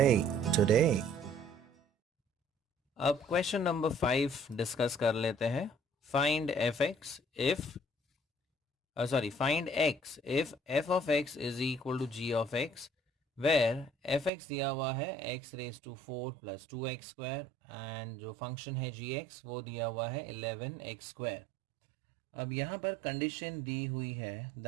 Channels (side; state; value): left; drops out; at 14.3 s